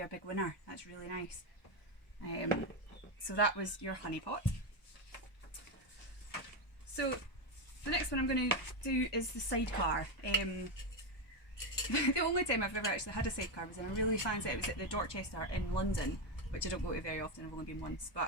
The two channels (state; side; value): late; right; 1.2 ms